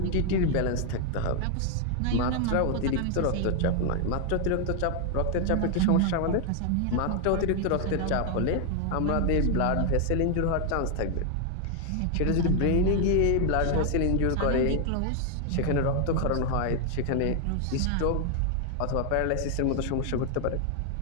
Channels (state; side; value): different; both; correlation 0.00